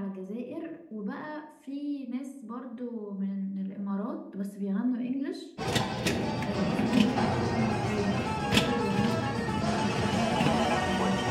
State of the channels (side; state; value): both; identical; correlation 1.00